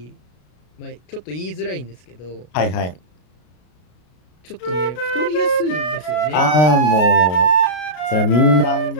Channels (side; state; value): right; late; 33 ms